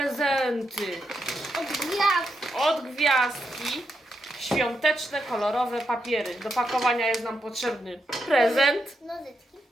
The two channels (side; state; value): both; normal; correlation 0.83